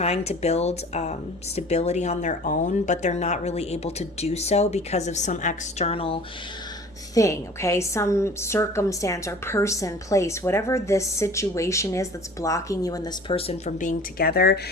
to build stability on their own, but they're not really able to do so because of some external thing, okay? Some circumstance or person, place, whatever this situation is that's blocking you and this person from being together.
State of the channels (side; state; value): both; normal; correlation 0.45